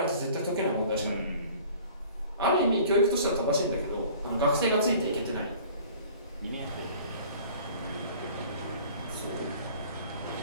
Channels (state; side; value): inverted; both; correlation -0.48